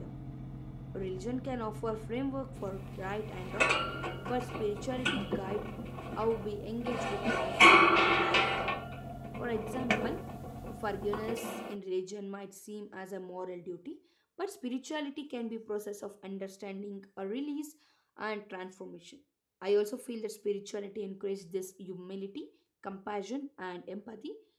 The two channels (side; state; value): both; identical; correlation 1.00